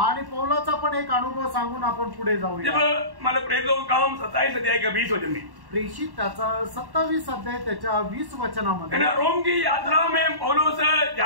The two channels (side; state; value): left; late; 1.1 ms